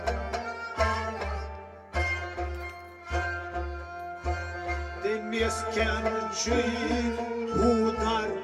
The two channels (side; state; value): both; identical; correlation 1.00